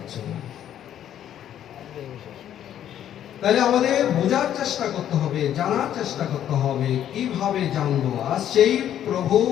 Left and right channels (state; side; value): quieter; right; 10.6 dB